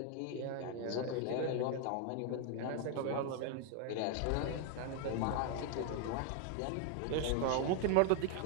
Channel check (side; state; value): both; different; correlation 0.01